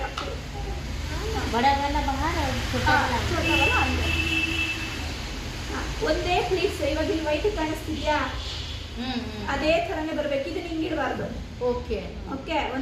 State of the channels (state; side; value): identical; both; correlation 1.00